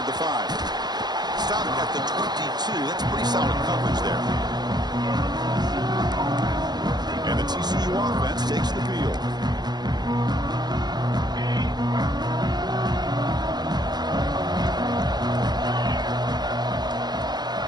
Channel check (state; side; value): late; left; 0.20 ms